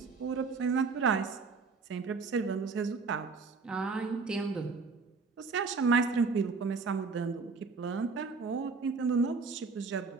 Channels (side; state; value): left; quieter; 4.6 dB